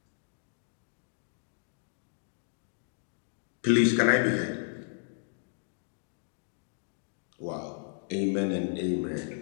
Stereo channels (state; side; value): silent; right; digital silence